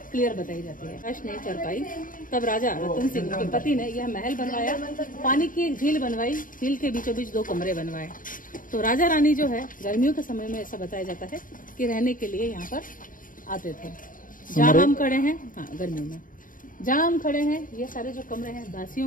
क्लियर बताई जाती है। कष्ट नहीं कर पाई, तब राजा रतन सिंह के पति ने यह महल बनवाया, पानी की एक झील बनवाई, झील के बीचों बीच 2 कमरे बनवाए। तो राजा रानी जो है गर्मियों के समय में ऐसा बताया जाता है कि रहने के लिए यहाँ पर आते थे। जहाँ हम खड़े हैं, हाँ गर्मियों में जहाँ हम खड़े हैं, ये सारे जो कमरे हैं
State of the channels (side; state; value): right; late; 0.39 ms